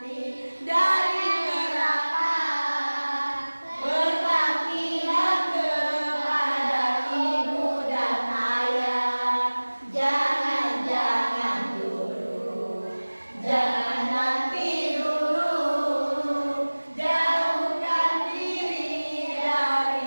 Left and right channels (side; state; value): both; inverted; correlation -1.00